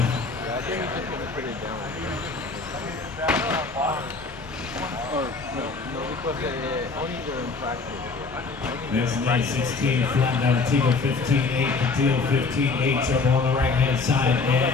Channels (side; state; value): right; quieter; 4.3 dB